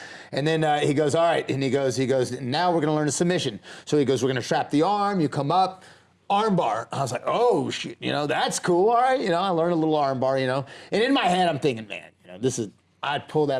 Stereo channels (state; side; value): identical; both; correlation 1.00